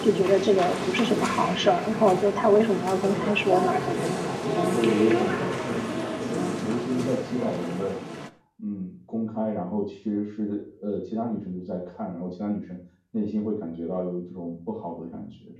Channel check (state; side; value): identical; both; correlation 1.00